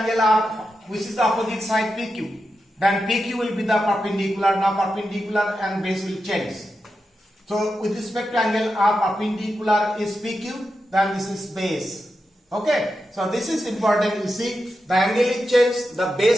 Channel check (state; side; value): normal; both; correlation 0.89